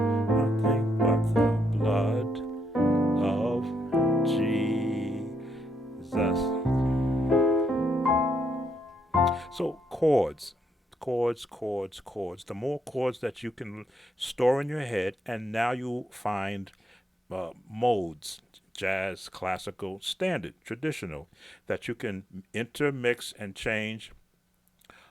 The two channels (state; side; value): normal; both; correlation 0.77